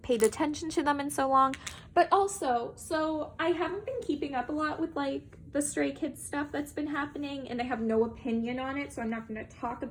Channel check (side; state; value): both; identical; correlation 1.00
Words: paid attention to them in so long. But also, so I haven't been keeping up a lot with like the Stray Kids stuff that's been happening, and I have no opinion on it, so I'm not going to talk